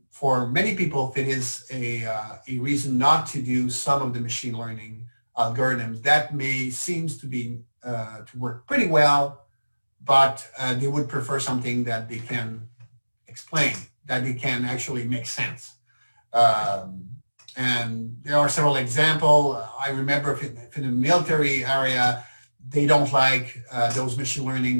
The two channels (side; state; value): both; inverted; correlation -1.00